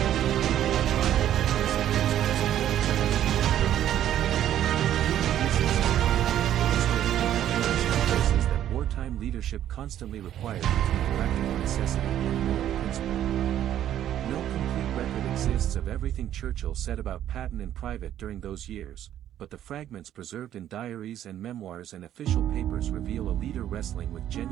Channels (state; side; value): quieter; left; 11.3 dB